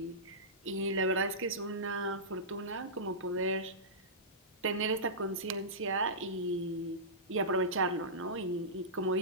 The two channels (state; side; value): normal; both; correlation -0.18